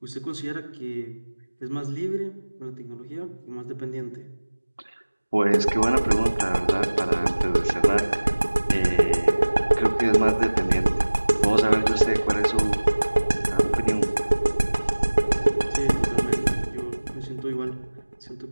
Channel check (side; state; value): both; inverted; correlation -1.00